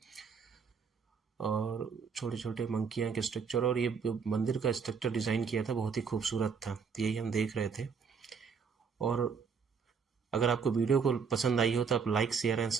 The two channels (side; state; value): left; quieter; 5.9 dB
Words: और छोटे छोटे मंकियाँ के स्ट्रक्चर, और ये मंदिर का स्ट्रक्चर डिज़ाइन किया था बहुत ही खूबसूरत था। तो यही हम देख रहे थे। और अगर आपको वीडियो को पसंद आई हो तो आप लाइक शेयर एंड